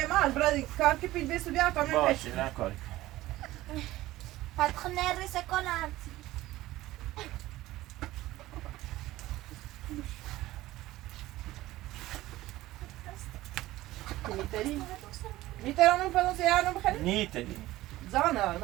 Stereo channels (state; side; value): quieter; left; 16.7 dB